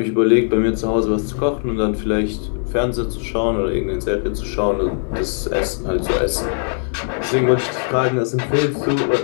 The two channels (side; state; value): right; silent; digital silence